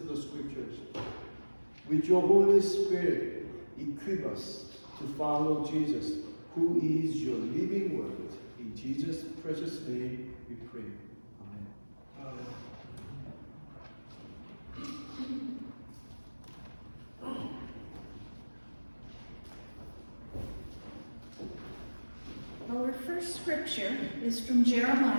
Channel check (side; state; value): both; inverted; correlation -1.00